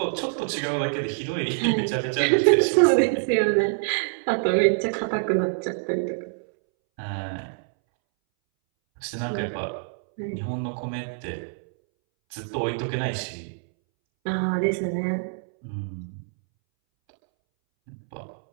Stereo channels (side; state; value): left; silent; 61 dB below the other